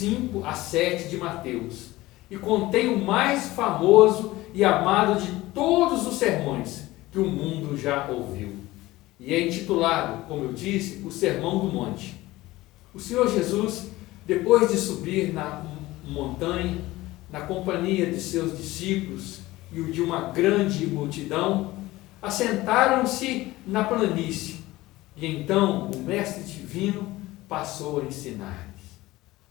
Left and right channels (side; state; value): right; quieter; 18.3 dB